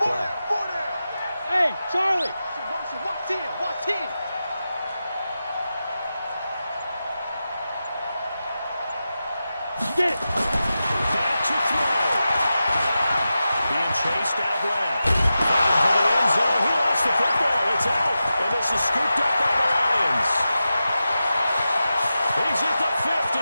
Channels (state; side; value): inverted; both; correlation -0.92